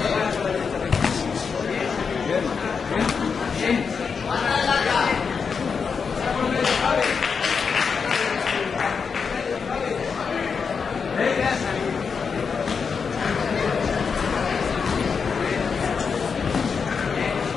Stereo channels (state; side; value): quieter; right; 5.8 dB